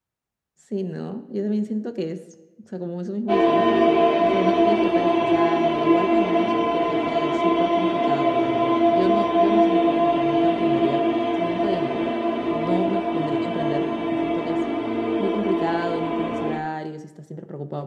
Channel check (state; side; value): identical; both; correlation 1.00